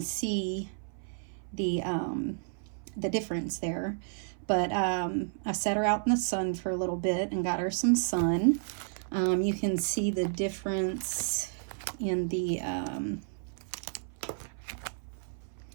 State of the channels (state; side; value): silent; left; 57 dB below the other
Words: see the difference there, but I set her out in the sun for a little bit and got her some sun. You can see the difference in the